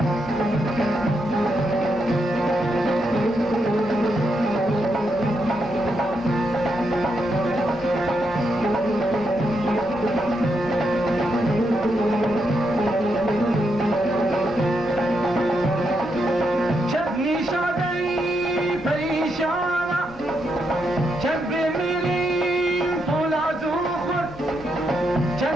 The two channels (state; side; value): noise; right; rumble, 23 dB below the sound